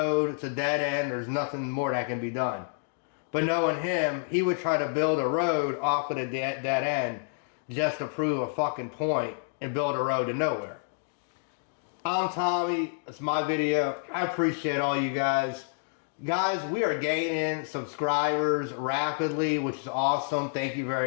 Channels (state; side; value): silent; right; digital silence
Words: it's a dead end. There's nothing more that can be done. But knowing him, he would try to build a road off of the dead end just to prove a fucking point and build a road to nowhere. I'm Tommy. It's my video. I appreciate all you guys. Guys, we are gaining subscribers rapidly, which is awesome. Thank you